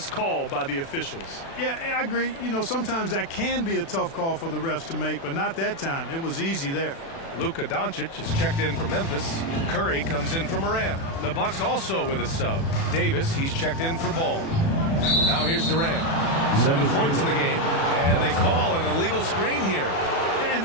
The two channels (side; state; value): right; late; 36 ms